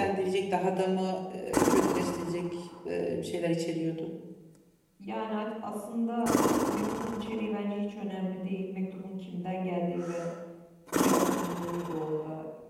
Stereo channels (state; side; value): identical; both; correlation 1.00